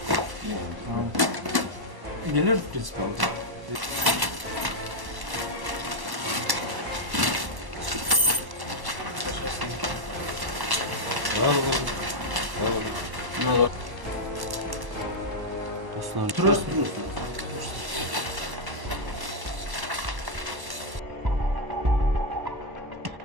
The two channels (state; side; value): late; left; 1.1 ms